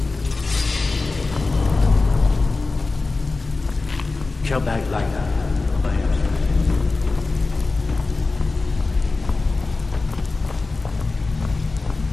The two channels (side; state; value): right; quieter; 3.6 dB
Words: Come back like that.